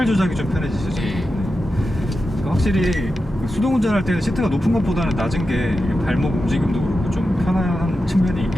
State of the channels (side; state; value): both; normal; correlation 0.90